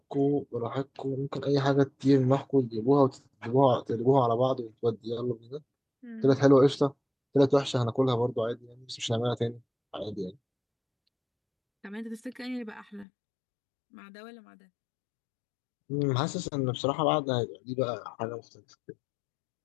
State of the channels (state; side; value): drops out; right; at 13.1 s